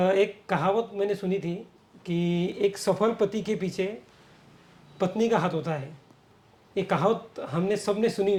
कहावत मैंने सुनी थी कि एक सफल पति के पीछे पत्नी का हाथ होता है। ये कहावत हमने सबने सुनी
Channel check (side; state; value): both; identical; correlation 1.00